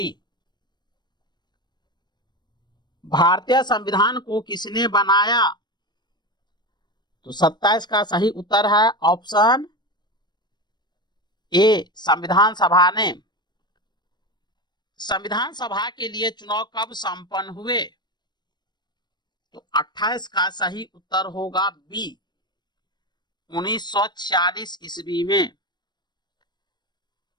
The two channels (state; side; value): late; right; 0.21 ms